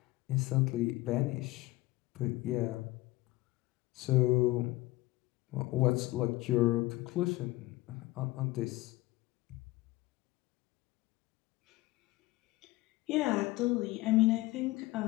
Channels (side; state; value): right; quieter; 19.0 dB